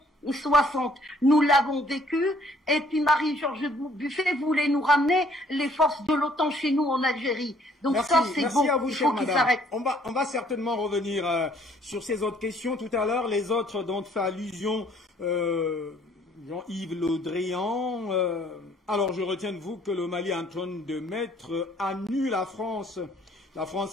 60. Nous l'avons vécu, et puis Marie-Georges Buffet voulait nous ramener les forces de l'OTAN chez nous en Algérie. Donc merci, ça, c'est bon, à vous, il faut qu'il s'arrête. On va certainement revenir sur ces autres questions tout à l'heure. Les autres dont fait allusion Jean-Yves Le Drian. Alors je retiens de vous que le Mali est en train de mettre à nu la France. La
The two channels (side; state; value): both; normal; correlation 0.61